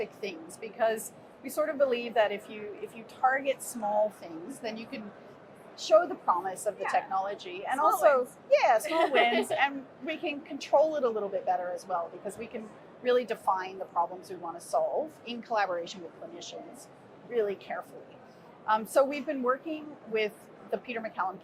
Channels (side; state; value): both; identical; correlation 1.00